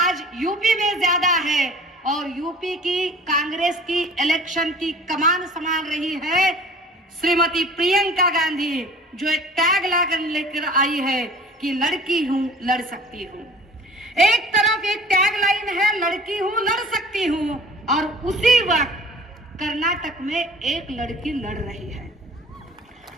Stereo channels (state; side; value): normal; both; correlation 0.46